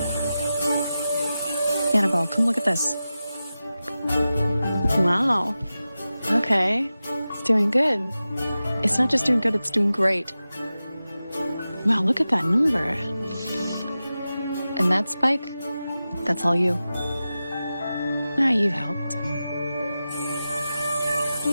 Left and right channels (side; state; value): both; inverted; correlation -0.94